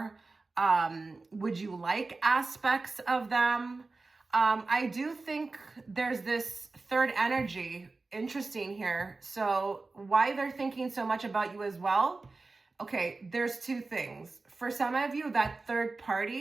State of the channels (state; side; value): quieter; left; 3.6 dB